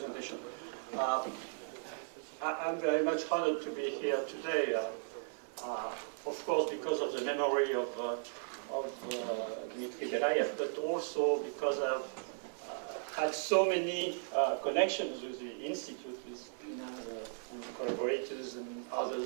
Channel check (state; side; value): silent; left; 53 dB below the other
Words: I'm very much honored to be here today, of course because of the memory of Dmitry Belyaev, but also because I've had so many connections with the Institute, with Nina and collaborators and